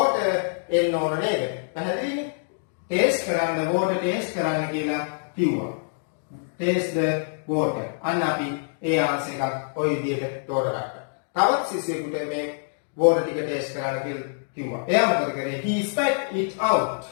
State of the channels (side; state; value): right; silent; digital silence